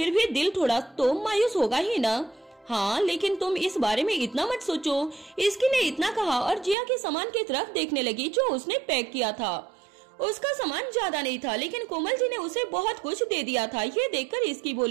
भी दिल थोड़ा तो मायूस होगा ही ना। हाँ, लेकिन तुम इस बारे में इतना मत सोचो। इसकी ने इतना कहा और जिया के सामान की तरफ देखने लगी जो उसने पैक किया था। उसका सामान ज्यादा नहीं था, लेकिन कोमल जी ने उसे बहुत कुछ दे दिया था। ये देखकर इसकी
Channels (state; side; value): drops out; left; at 6.8 s